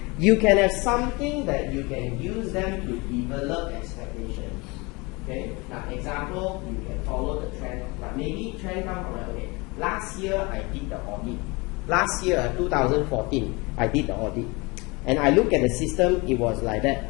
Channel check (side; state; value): right; quieter; 26.0 dB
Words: You can have something that you can use them to develop expectations. Okay. Now, example, you can follow the trend. But maybe trend come from okay. Last year I did the audit. Last year, 2014, I did the audit. And I look at the system, it was like that.